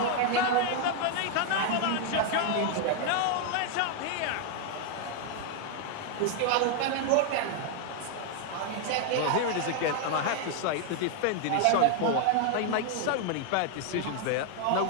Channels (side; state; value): both; different; correlation 0.00